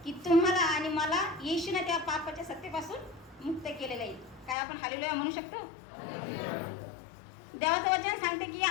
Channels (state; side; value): drops out; right; at 4.5 s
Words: की तुम्हाला आणि मला येशूने त्या पापाच्या सत्तेपासून मुक्त केलेलं आहे. काय आपण हालेलुया म्हणू शकतो? देवाचं वचन सांगते की